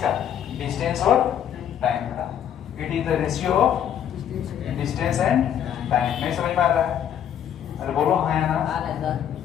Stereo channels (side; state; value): right; quieter; 9.6 dB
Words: डिस्टेंस और टाइम का। It is the ratio of distance and time. नहीं समझ में आ रहा है? अरे बोलो हाँ या ना?